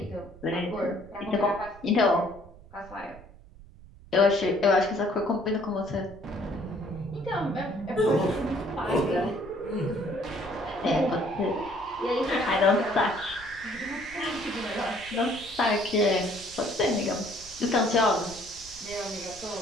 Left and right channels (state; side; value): noise; right; rumble, 20 dB below the sound